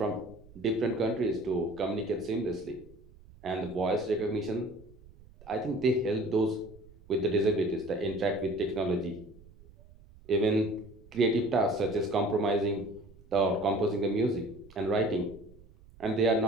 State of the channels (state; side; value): noise; right; rumble, 23 dB below the sound